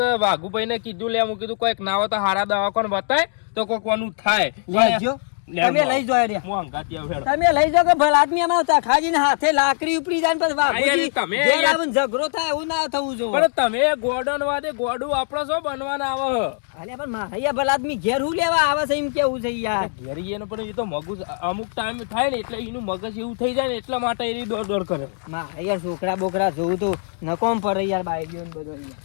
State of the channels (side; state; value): right; silent; 64 dB below the other